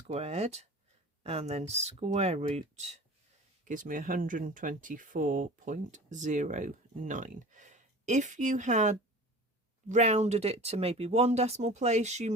and then square root gives me 124.09. If you had rounded it to maybe one decimal place, you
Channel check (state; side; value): normal; both; correlation 0.39